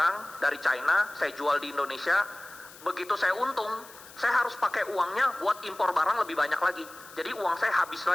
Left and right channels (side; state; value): left; noise; hiss, 20 dB below the sound